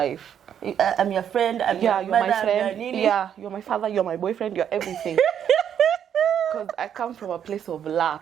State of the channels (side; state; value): left; quieter; 9.0 dB